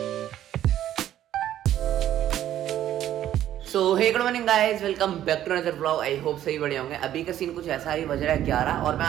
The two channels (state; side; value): quieter; left; 11.9 dB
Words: So hey good morning guys, welcome back to another vlog. I hope सही बढ़िया होंगे। अभी का सीन कुछ ऐसा ही, बज रहा है 11 और मैं